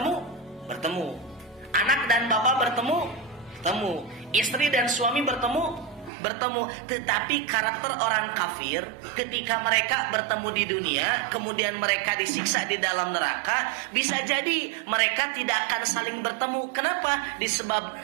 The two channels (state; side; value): drops out; left; at 6.1 s